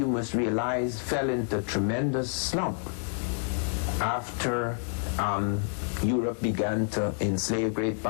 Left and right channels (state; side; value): silent; right; 59 dB below the other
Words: must realize, fell into tremendous slump after Europe began to enslave great